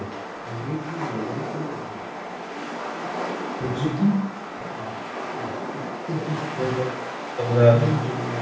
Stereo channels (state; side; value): identical; both; correlation 1.00